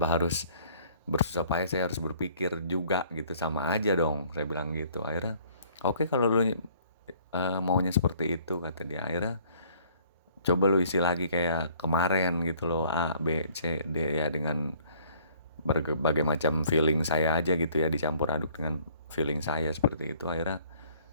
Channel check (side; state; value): both; inverted; correlation -0.58